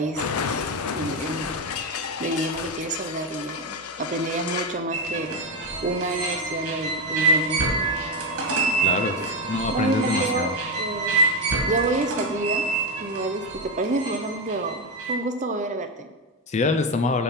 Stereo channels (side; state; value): both; normal; correlation 0.09